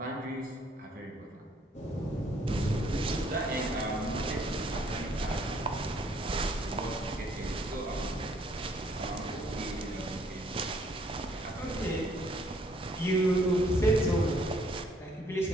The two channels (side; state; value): both; normal; correlation 0.65